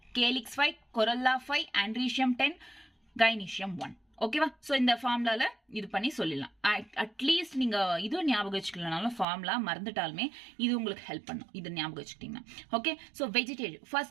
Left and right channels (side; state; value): left; drops out; at 9.2 s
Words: calyx 5, corolla 5, androecium 10, gynoecium 1. ஓகேவா? ஸோ இந்த ஃபார்முலால இது பண்ணி சொல்லிடலாம். அட்லீஸ்ட் நீங்க இதுவும் ஞாபகம் வச்சுக்கலனாலும் ஃபார்முலா மறந்துட்டாலுமே இது உங்களுக்கு ஹெல்ப் பண்ணும், இது ஞாபகம் வச்சுக்கிட்டீங்கன்னா. ஓகே, ஸோ வெஜிடேட்டிவ்